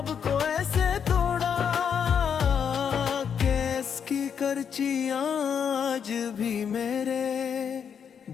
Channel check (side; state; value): right; quieter; 7.5 dB